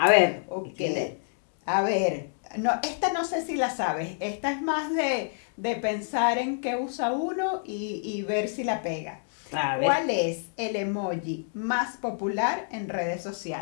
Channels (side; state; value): right; silent; digital silence